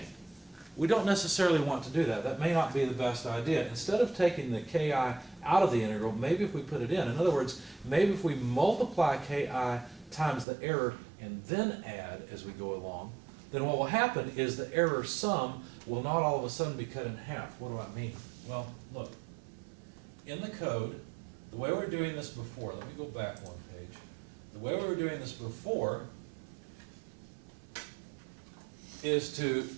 We don't necessarily want to do that. That may not be the best idea. Instead of taking the ki out of the integral, maybe if we put it in other words, maybe if we multiply ki times the error and then add as we go along, then what will happen is the error sum will not all of a sudden be cut in half. What do I mean? Well, look, in the code, the way we were doing this before, let me go back one page. The way we were doing this before is to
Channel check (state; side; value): drops out; left; at 10.5 s